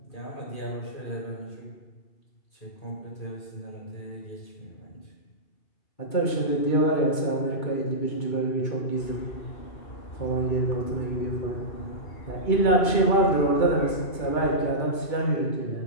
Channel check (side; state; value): right; late; 2.2 ms